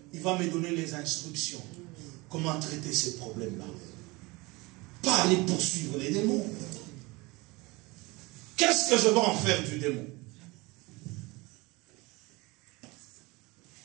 Il va me donner les instructions. Comment traiter ces problèmes-là. Pas aller poursuivre les démons. Qu'est-ce que je vais en faire du démon?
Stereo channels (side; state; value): left; quieter; 23.9 dB